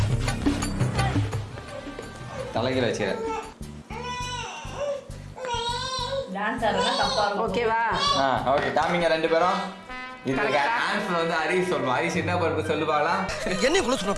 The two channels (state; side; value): identical; both; correlation 1.00